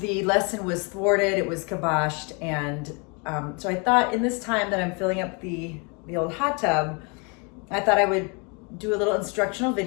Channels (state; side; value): quieter; right; 32.9 dB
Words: lesson was thwarted, it was kiboshed, and so I thought in this time that I'm filling up the old hot tub, I thought I would do a little instructional